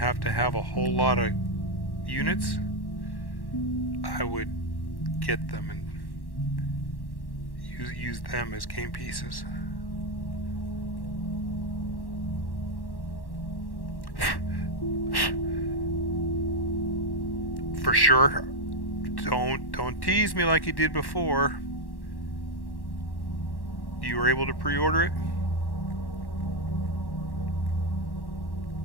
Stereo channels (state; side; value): late; right; 1.1 ms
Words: to have a whole lot of units, I would get them and use them as game pieces. For sure. Don't tease me like you did before. You were able to pre-order it?